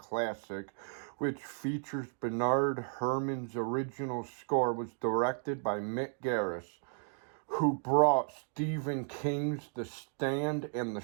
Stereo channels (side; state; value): left; silent; digital silence